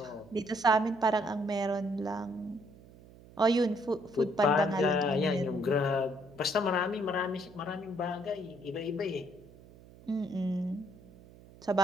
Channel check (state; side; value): noise; right; hum, 22 dB below the sound